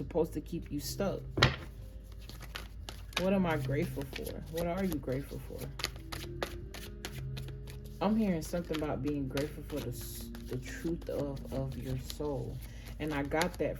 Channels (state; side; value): identical; both; correlation 1.00